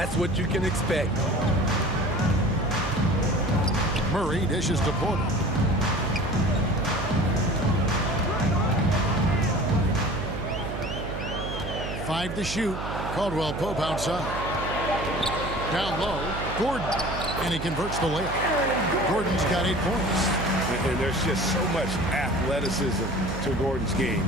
what you can expect. Murray dishes to Porter. Five to shoot. Caldwell Pope outside. Down low, Gordon. And he converts the layup. Gordon's got 8 points. And there's just so much athleticism to Gordon's game.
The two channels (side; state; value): right; noise; hum, 7 dB below the sound